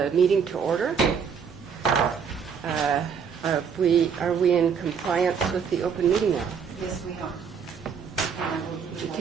meeting to order. Are we in compliance with the open meeting law? Yes, we are. Would you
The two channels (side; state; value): left; quieter; 6.7 dB